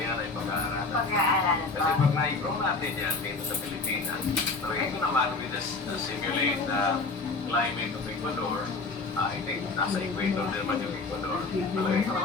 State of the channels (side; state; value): right; quieter; 3.8 dB